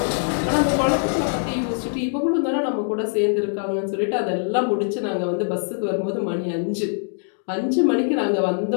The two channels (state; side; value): silent; right; digital silence